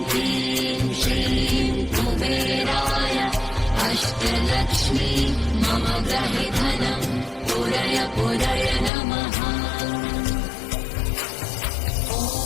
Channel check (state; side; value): drops out; right; at 8.9 s